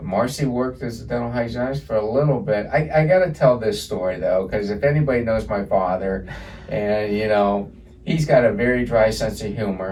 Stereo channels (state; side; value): identical; both; correlation 1.00